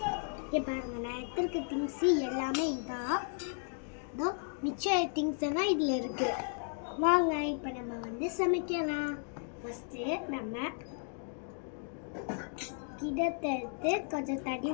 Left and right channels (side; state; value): right; silent; 55 dB below the other